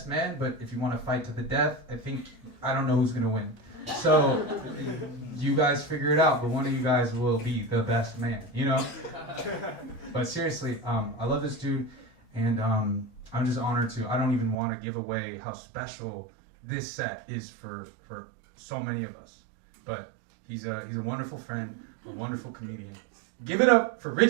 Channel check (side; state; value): left; drops out; at 14.6 s